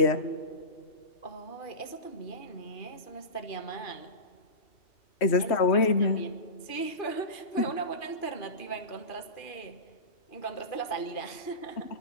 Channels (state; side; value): late; right; 2.4 ms